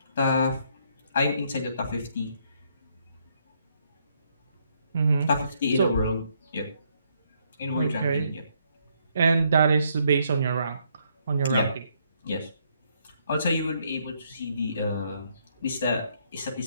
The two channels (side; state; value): both; inverted; correlation -0.72